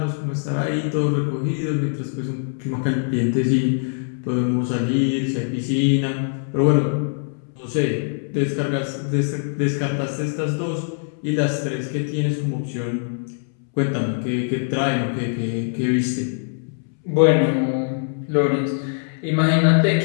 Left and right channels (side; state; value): right; silent; 64 dB below the other